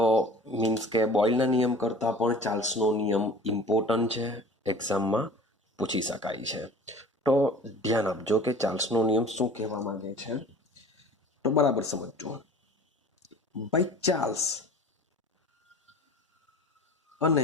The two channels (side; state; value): both; normal; correlation 0.43